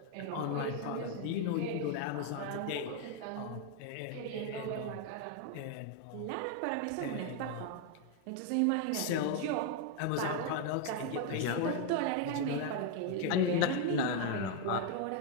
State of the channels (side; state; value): both; different; correlation 0.00